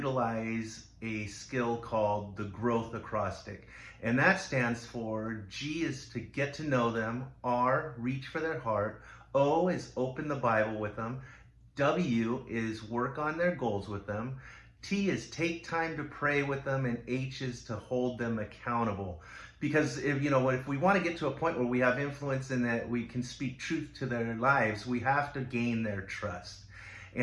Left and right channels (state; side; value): identical; both; correlation 1.00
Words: a skill called the growth acrostic. And that stands for G is to get to know them, R, reach for their heart, O is open the Bible with them, W is work on their goals with them, T is take time to pray with them, and H is to hold them accountable. Because if we want to get to a point where we have influence and that we can speak truth to their lives, we have to gain their trust.